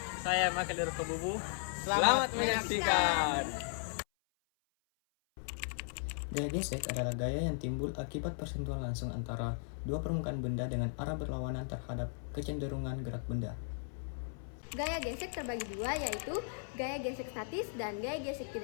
Saya Makadir Kebubu. Selamat menyaksikan. Gaya gesek adalah gaya yang timbul akibat persentuhan langsung antara dua permukaan benda dengan arah berlawanan terhadap kecenderungan gerak benda. Gaya gesek terbagi dua, yaitu gaya gesek statis dan gaya gesek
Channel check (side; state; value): right; silent; 53 dB below the other